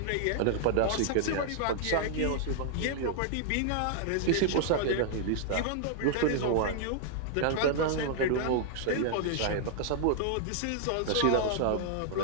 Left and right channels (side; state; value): both; different; correlation -0.01